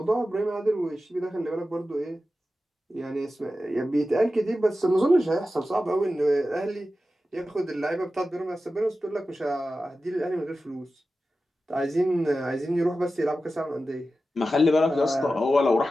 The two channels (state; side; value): normal; both; correlation 0.93